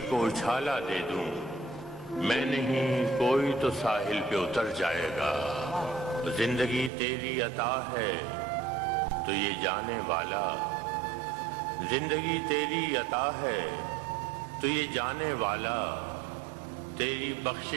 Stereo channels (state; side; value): drops out; left; at 6.9 s